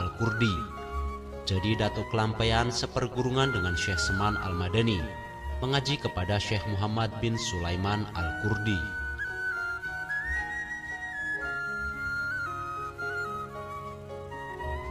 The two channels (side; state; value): both; identical; correlation 1.00